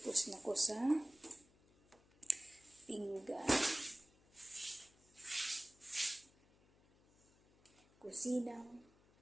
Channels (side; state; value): left; noise; hum, 29 dB below the sound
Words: na ko sa pinggan. Kusinang